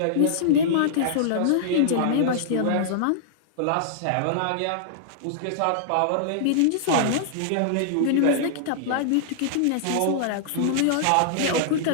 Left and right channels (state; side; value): different; both; correlation -0.01